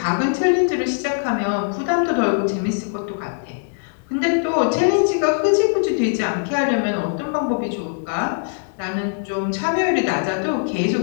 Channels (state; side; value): silent; right; digital silence